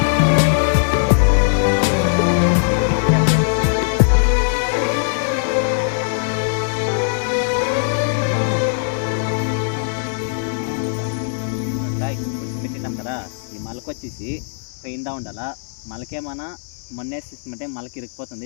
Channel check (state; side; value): silent; right; 62 dB below the other